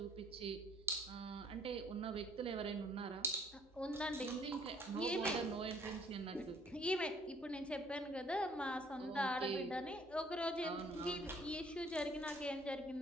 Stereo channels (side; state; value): both; normal; correlation 0.60